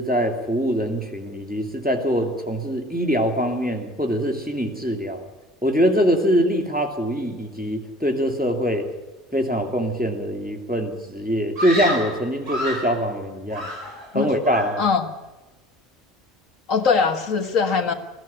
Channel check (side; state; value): both; normal; correlation 0.47